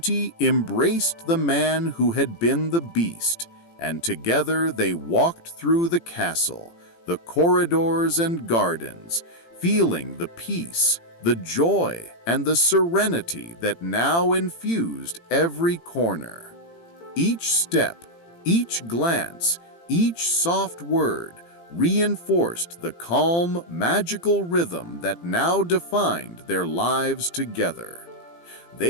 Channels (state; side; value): late; right; 18 ms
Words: embraced the man who had been the Beast, and together they walked through the castle, the corridors and gardens, feeling the peace, the joy, and the serenity that now infused every corner. Each step, each glance, each soft word reinforced the calm, magical rhythm that now defined their lives together.